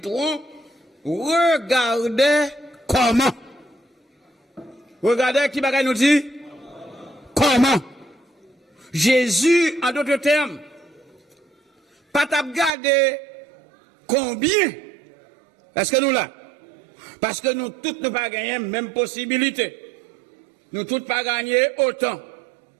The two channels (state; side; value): drops out; left; at 12.7 s